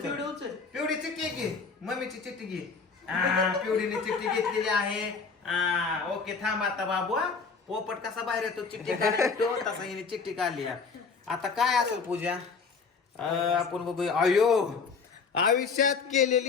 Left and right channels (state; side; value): quieter; right; 5.1 dB